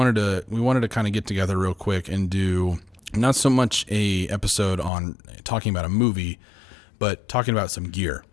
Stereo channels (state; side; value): drops out; right; at 4.9 s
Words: to kind of get together real quick and do not so much a episode on talking about a movie, but talking about some gear.